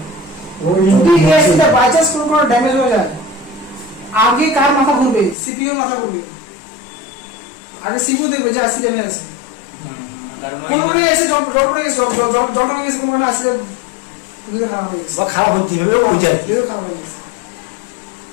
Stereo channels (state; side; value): drops out; right; at 5.4 s